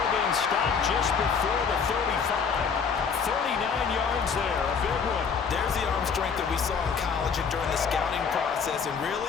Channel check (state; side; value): quieter; right; 6.1 dB